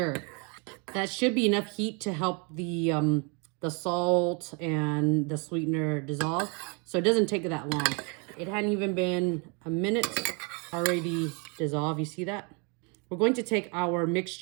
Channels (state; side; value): quieter; left; 34.1 dB